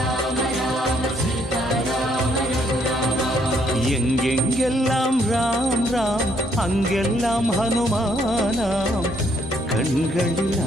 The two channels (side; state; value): both; normal; correlation 0.69